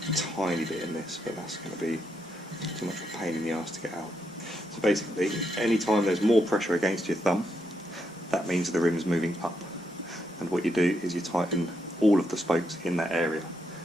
tiny bit in this, but that's going to be too much of a pain in the arse to get out. So basically, any time there's more pressure against your thumb, that means the rim is moving up. And what you do is you tighten all of the spokes in that area,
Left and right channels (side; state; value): both; normal; correlation 0.80